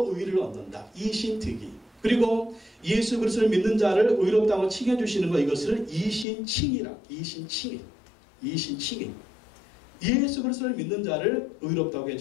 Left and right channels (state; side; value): drops out; right; at 6.2 s